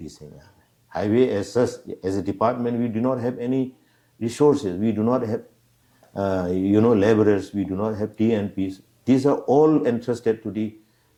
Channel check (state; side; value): identical; both; correlation 1.00